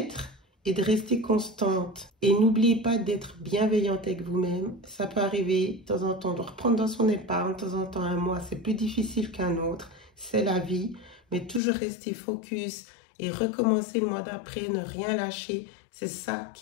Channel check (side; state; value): right; drops out; at 11.6 s